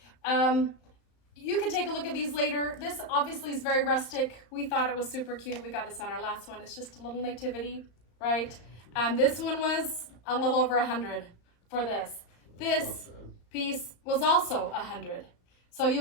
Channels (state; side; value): late; right; 34 ms